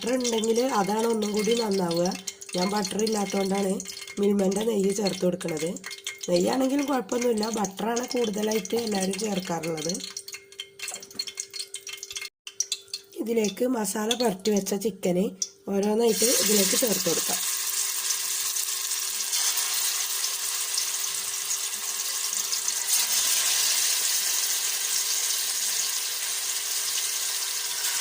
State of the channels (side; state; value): both; identical; correlation 1.00